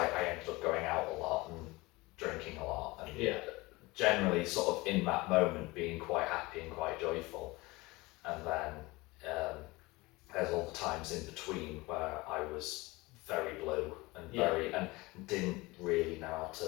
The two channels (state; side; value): quieter; right; 22.3 dB